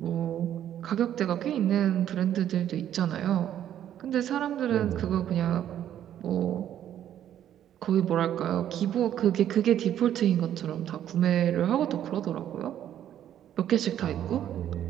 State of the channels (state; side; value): quieter; left; 10.8 dB